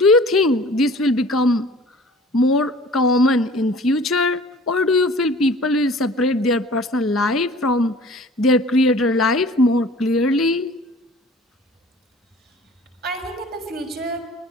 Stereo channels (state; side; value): normal; both; correlation 0.46